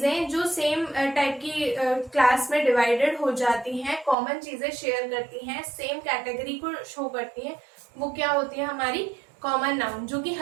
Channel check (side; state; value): left; drops out; at 4.2 s